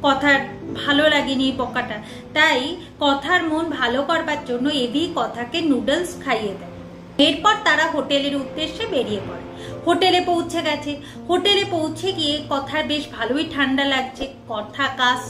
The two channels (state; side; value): identical; both; correlation 1.00